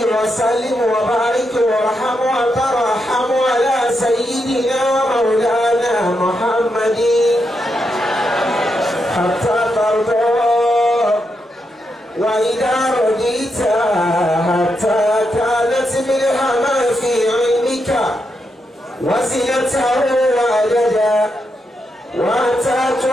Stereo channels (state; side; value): normal; both; correlation 0.83